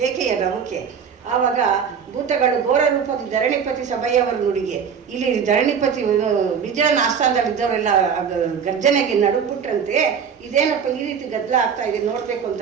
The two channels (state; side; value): quieter; left; 7.0 dB